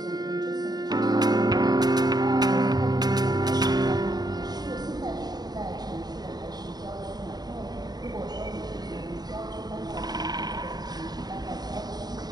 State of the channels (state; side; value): late; left; 0.20 ms